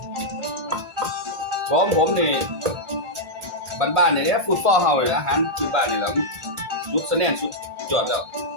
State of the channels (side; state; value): left; late; 1.5 ms